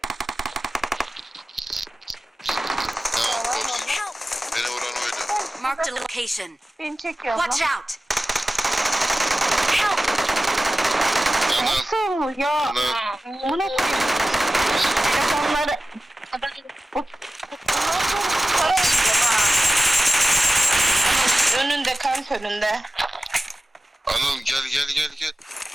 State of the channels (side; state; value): both; normal; correlation 0.96